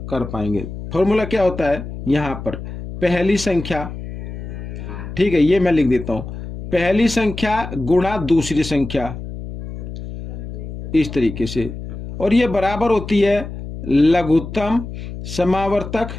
कर पाएंगे। फॉर्मूला क्या होता है? यहाँ पर पहली संख्या, ठीक है, ये मैं लिख देता हूँ, पहली संख्या गुणा दूसरी संख्या, इस तरीके से, और ये बराबर होती है लघुत्तम समावर्तक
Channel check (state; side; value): noise; left; hum, 9 dB below the sound